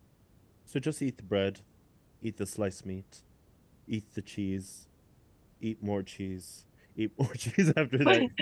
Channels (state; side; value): identical; both; correlation 1.00